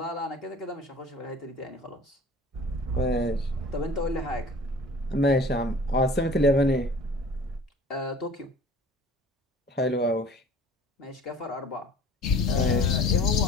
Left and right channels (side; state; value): both; normal; correlation 0.46